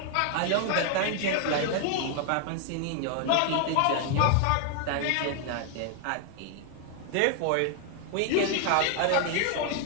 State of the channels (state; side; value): different; both; correlation 0.00